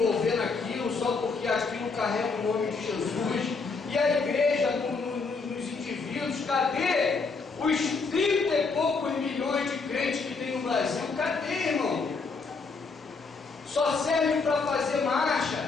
naquilo só porque aquilo carrega o nome de Jesus? E a igreja nos indivíduos, cadê os 30 e poucos milhões de crentes que tem no Brasil? Cadê, irmão? Só serve para fazer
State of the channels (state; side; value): quieter; right; 4.4 dB